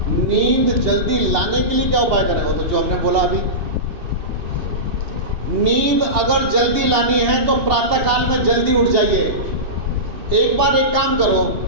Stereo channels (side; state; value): left; late; 2.8 ms